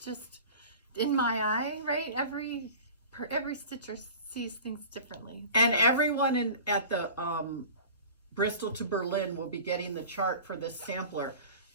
just in my eye, right? Every stitcher sees things differently. And everyone at the Bristol to Berlin will be getting the chart for this sampler.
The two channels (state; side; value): inverted; both; correlation -0.39